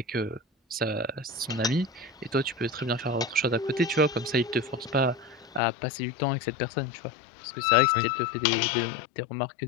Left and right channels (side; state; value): right; drops out; at 5.6 s